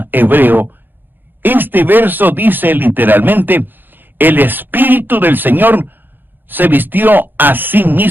hebreo, este verso dice literalmente, el Espíritu del Señor se vistió a sí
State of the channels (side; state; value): left; late; 0.093 ms